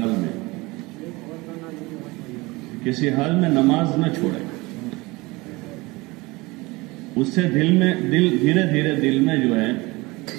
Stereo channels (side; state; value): left; quieter; 22.9 dB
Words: میں، کسی حال میں نماز نہ چھوڑے. اس سے دل دھیرے دھیرے دل میں جو ہے